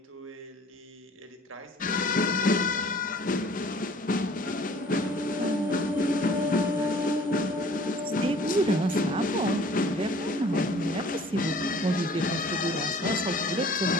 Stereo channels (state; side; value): normal; both; correlation 0.51